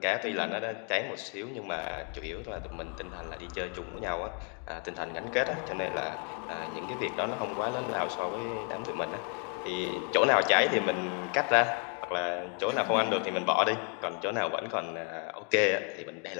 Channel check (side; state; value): right; quieter; 35.3 dB